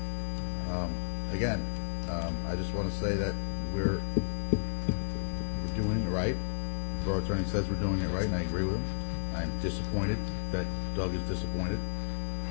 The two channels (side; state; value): right; silent; digital silence